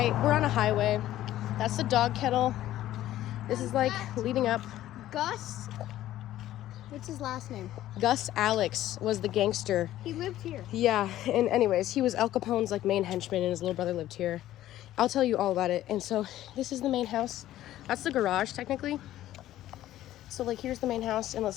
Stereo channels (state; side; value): quieter; right; 13.7 dB